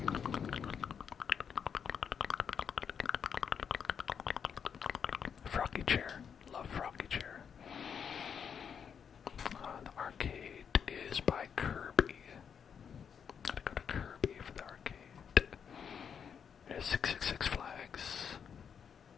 Froggy chair. Love Froggy chair. The arcade is by Kirby. Gotta go to Kirby for the arcade. There's 666 flags.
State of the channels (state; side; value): quieter; right; 7.3 dB